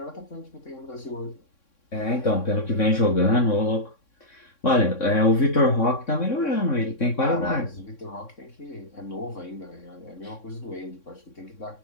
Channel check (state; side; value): late; right; 3.6 ms